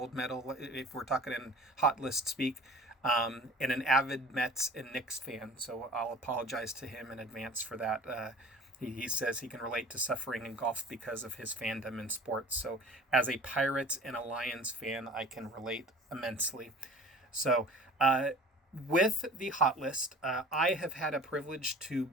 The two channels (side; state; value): both; normal; correlation 0.44